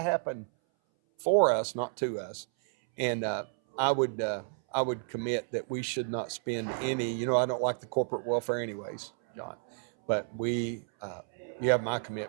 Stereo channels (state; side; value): silent; left; 57 dB below the other